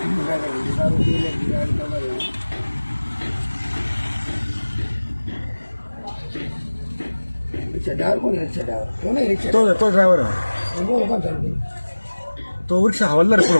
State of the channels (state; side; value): inverted; both; correlation -1.00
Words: तो ड्रायव्हर आहे. तो रिक्षा हवालदार पुढे